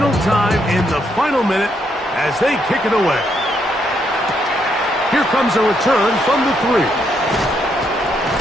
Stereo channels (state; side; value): normal; both; correlation 0.76